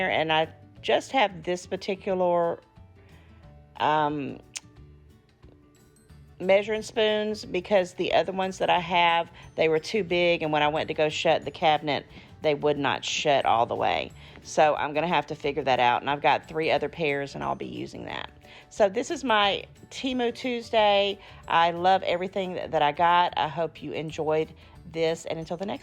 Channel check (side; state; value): both; identical; correlation 1.00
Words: and I just have this particular measuring spoons because the other ones that I have, they were too big, and when I went to go shut the cabinet, they would not shut all the way. So I'm going to have to figure that out, and I've got 3 other pairs, and I'll be using that. So this is my Temu Tuesday. I love everything that I got. I hope you enjoyed this, and until the